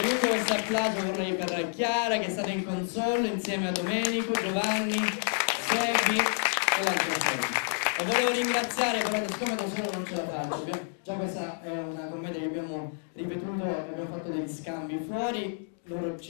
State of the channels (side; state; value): right; silent; 58 dB below the other